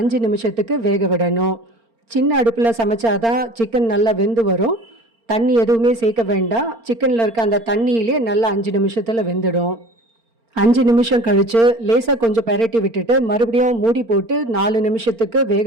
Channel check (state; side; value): late; left; 4.4 ms